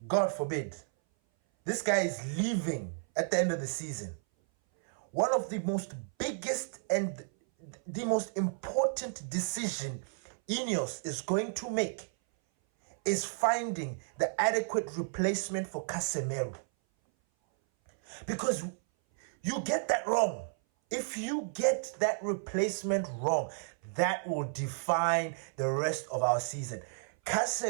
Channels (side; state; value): left; silent; 56 dB below the other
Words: God forbid, this guy is leaving at the end of the season. One of the most biggest and the most important decision Ineos is going to make is finding the adequate replacement for Casemiro. Because you get that wrong. If you get that replacement wrong, that will define the rest of our season.